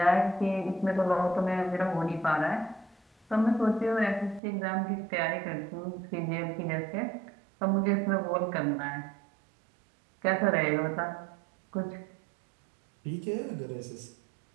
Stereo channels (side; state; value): left; drops out; at 4.4 s